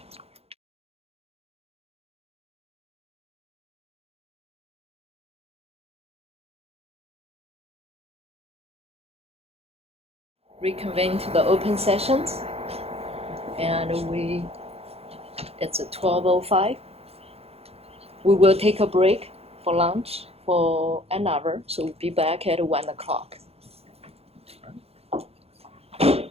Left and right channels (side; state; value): left; late; 0.29 ms